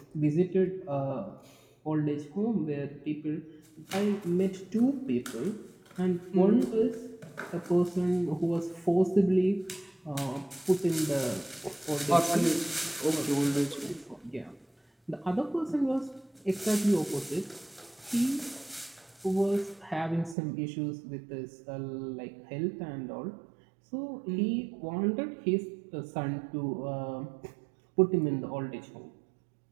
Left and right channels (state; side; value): drops out; left; at 20.4 s